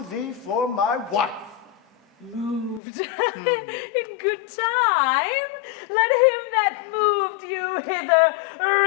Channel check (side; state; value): right; drops out; at 2.8 s